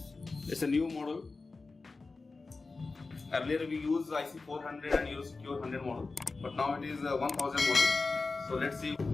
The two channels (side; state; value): right; quieter; 3.8 dB